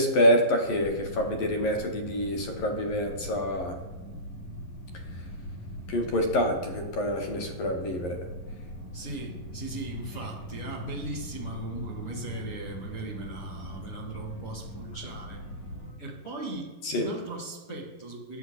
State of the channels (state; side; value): late; right; 11 ms